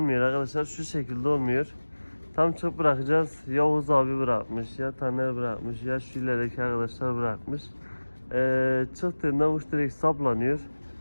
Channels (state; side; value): inverted; both; correlation -1.00